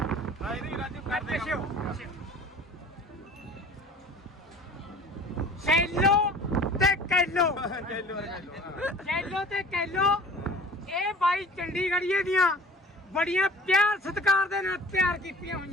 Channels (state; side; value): normal; both; correlation 0.45